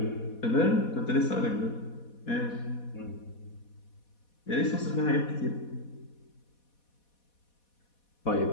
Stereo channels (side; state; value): right; late; 4.2 ms